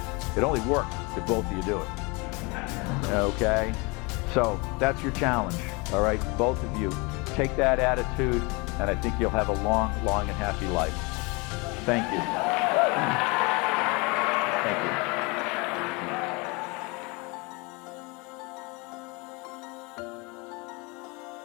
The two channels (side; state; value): right; quieter; 28.0 dB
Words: It only works if both of you do it, okay? So that's your challenge, all right? Both of you take that attitude, and I think you'll have a long, long and happy life. Thank you. Thank you.